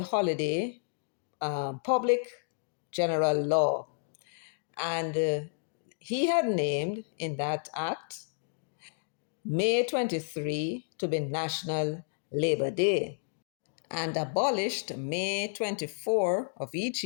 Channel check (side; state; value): right; silent; digital silence